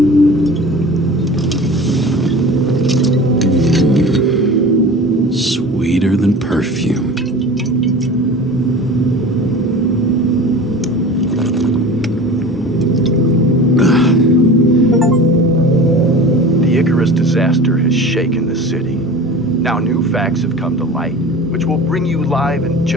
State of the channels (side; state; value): both; normal; correlation 0.37